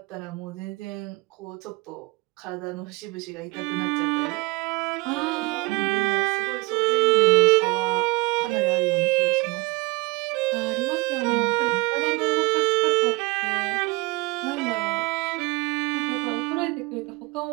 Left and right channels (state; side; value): quieter; left; 23.6 dB